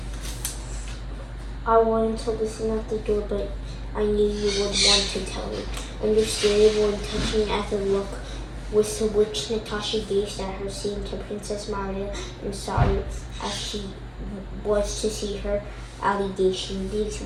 I wanted to listen at the door, but I knew you would want to tell me. Understandable and touching as a look with which Natasha gazed at her seemed to Princess Maria and sorry as she was to see her allegation. These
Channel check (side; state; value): both; identical; correlation 1.00